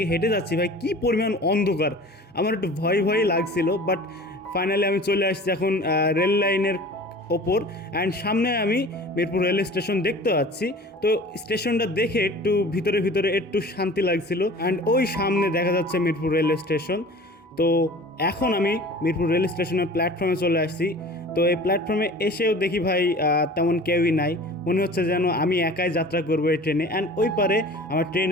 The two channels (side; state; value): both; normal; correlation 0.42